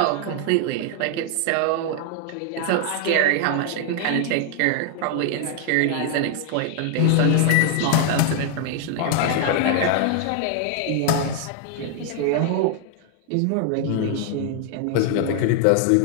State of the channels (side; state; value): both; different; correlation 0.00